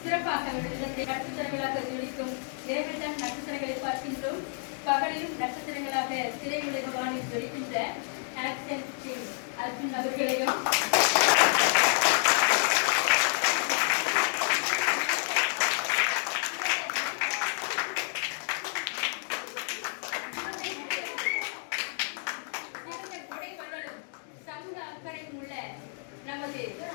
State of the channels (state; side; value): silent; right; 58 dB below the other